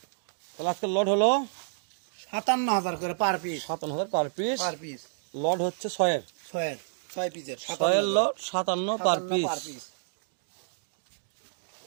তাহলে আজকে লট হলো 57,000 করে per piece. 57,000 per piece. Per piece lot হচ্ছে 6 6 পিসের 6 লট 57 পার পিস।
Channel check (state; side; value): silent; left; digital silence